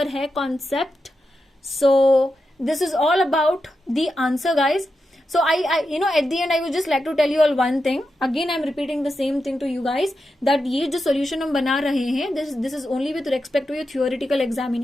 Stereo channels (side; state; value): both; normal; correlation 0.88